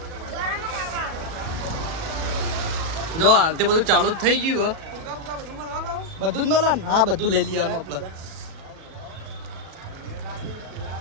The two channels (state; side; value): late; left; 37 ms